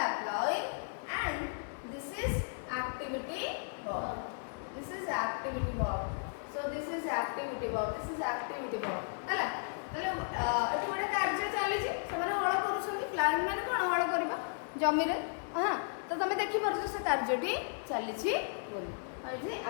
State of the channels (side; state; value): right; silent; 55 dB below the other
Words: ploughing and this is activity verb this is activity verb so this is activity verb हला हले एठी गोटे कार्य चली जे सेमाने हळ करूछथि प्लाउइंग माने कोन हळ करबा जमी रे हां तो तुम देखि परछ से कार्यटी चली छी बोली और जे